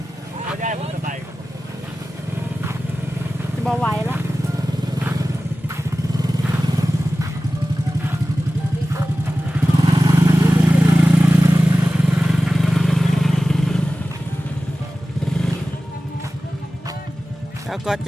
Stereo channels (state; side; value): normal; both; correlation 0.95